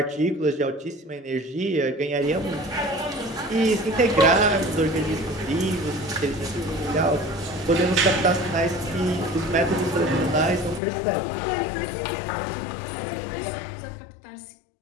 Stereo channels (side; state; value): right; drops out; at 10.8 s